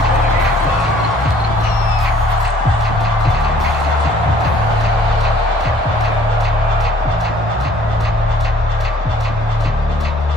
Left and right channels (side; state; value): both; normal; correlation 0.57